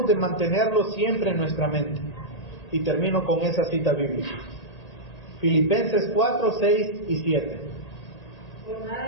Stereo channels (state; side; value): late; right; 1.8 ms